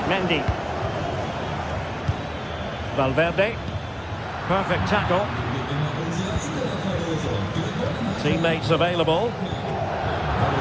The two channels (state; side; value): identical; both; correlation 1.00